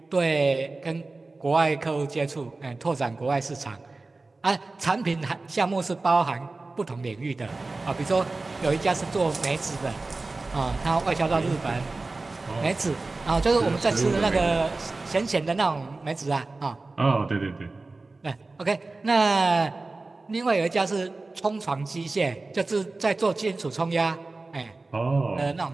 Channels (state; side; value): quieter; left; 3.4 dB